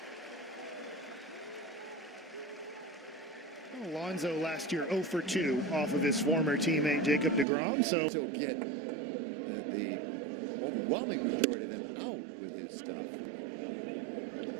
Alonso last year 0 for 2 off of his former teammate Jacob deGrom. So get the overwhelming majority of them out with his stuff.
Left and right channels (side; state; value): left; drops out; at 7.5 s